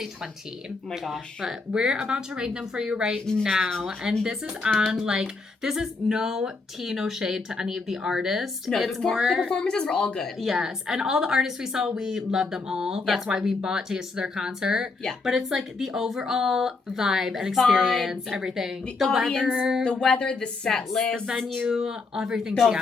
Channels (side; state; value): right; quieter; 4.0 dB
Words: 20. Oh my gosh. But we're about to rank them for you right now. And this is on, this is no tea, no shade to any of the artists. No, it's the more... performances were all good. Yes. And all the artists we saw, we love them all. That's why we bought tickets to their concert. Yeah. But it's like the overall vibe and experience, everything. The audience, the weather, the set list. The venue, everything the